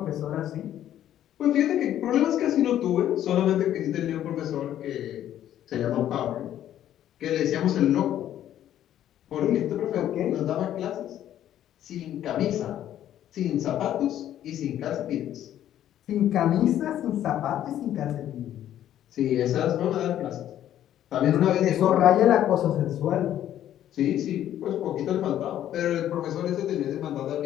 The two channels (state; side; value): quieter; right; 11.6 dB